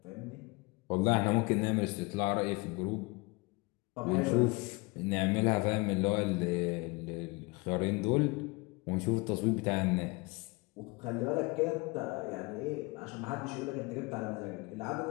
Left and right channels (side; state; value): right; quieter; 26.5 dB